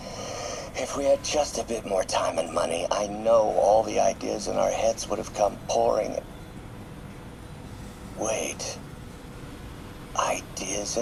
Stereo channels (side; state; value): both; identical; correlation 1.00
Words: If we had just a bit more time and money, I know all the ideas in our heads would have come pouring. Wait. Ideas